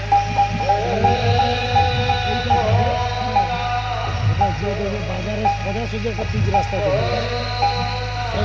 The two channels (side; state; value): both; identical; correlation 1.00